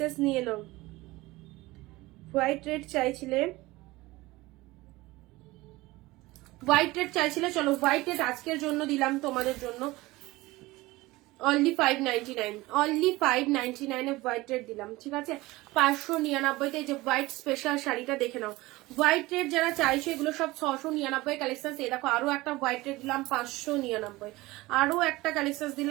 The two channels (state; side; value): quieter; left; 20.1 dB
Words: নিয়ে নাও। হোয়াইট রেড চাইছিলে, হোয়াইট রেড চাইছিলে, চলো হোয়াইট রেড আজকের জন্য দিলাম তোমাদের জন্য only 599, only 599 a white red দিলাম, ঠিক আছে। 599 যে হোয়াইট স্পেশাল শাড়িটা দেখে নাও। হোয়াইট রেড যারা চাইছো এগুলো সব 699 কালেকশন। এই দেখো আরো একটা হোয়াইট রেড দিলাম 599, আরো একটা কালেকশন